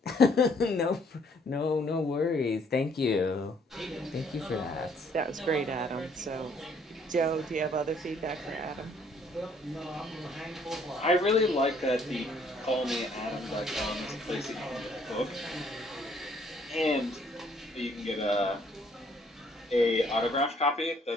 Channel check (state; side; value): normal; both; correlation 0.64